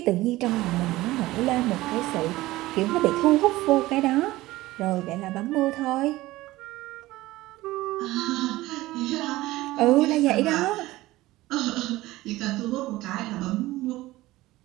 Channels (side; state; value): left; quieter; 17.8 dB